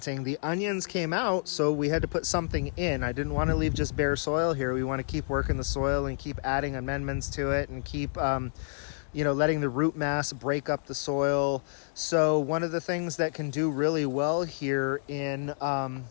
the onions came out, so we had to put something in. I didn't want to leave just bare soil here. We want to keep working the soil and keep adding amendments to it and keep you know, letting the root mass break up the soil. So one of the things that can do really well here in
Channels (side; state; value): right; silent; digital silence